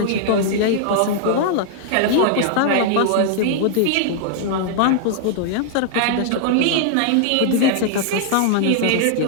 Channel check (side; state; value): both; different; correlation -0.01